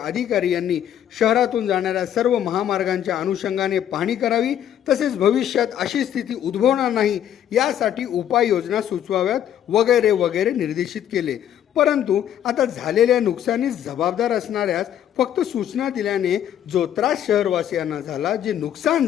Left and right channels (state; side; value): quieter; right; 10.4 dB